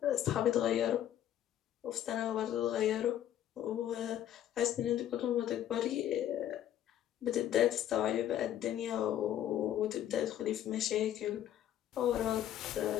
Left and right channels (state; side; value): quieter; right; 11.4 dB